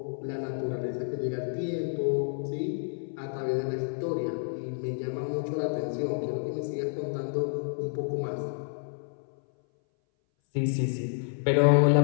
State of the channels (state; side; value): silent; right; 58 dB below the other